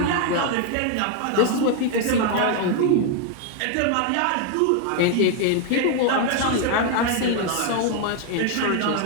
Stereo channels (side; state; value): both; different; correlation 0.00